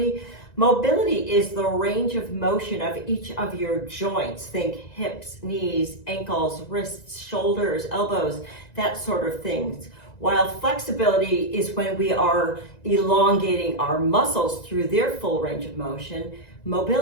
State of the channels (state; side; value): late; right; 1.9 ms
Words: Mobility is the range of motion of each of your joints. Think hips, knees, ankles, wrists, shoulders, elbows, that sort of things. While flexibility is when we are elongating our muscles through their full range of motion,